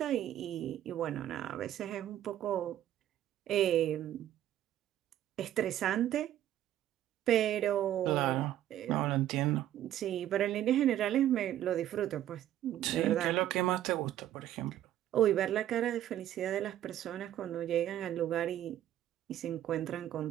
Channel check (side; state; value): left; quieter; 12.1 dB